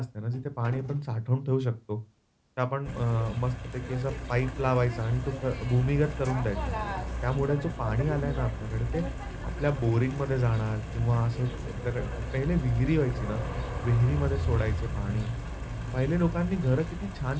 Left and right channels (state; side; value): identical; both; correlation 1.00